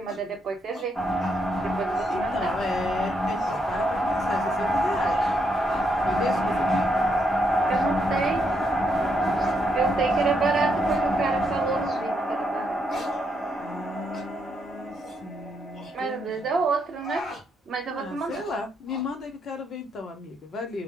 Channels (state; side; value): normal; both; correlation 0.78